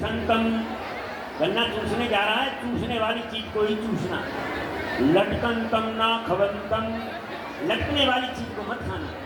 गन्ना चूसने जा रहा है, चूसने वाली चीज को ही चूसना। लटकंतम ना खवंतम, लटकने वाली चीज को मत खाना।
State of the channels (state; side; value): identical; both; correlation 1.00